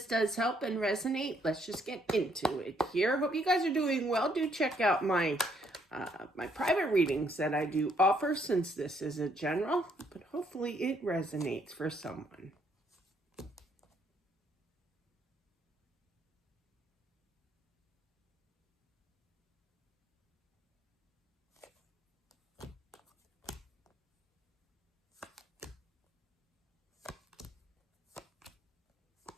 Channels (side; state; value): both; normal; correlation 0.70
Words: does help and resonate. Let's just get into it here. Hope you guys are doing well. Do check out my private readings that I do offer, since this is a general, but hopefully it resonates for someone.